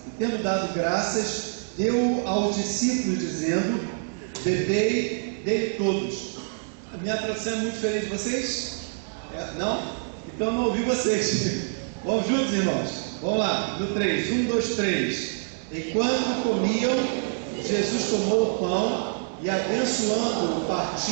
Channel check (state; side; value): silent; left; digital silence